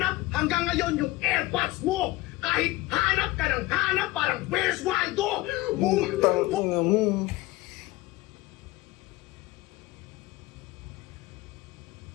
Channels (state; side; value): quieter; right; 18.8 dB